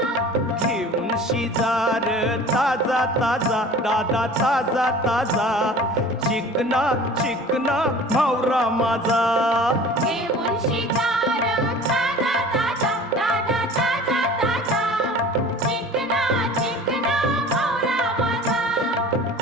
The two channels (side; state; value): both; normal; correlation 0.43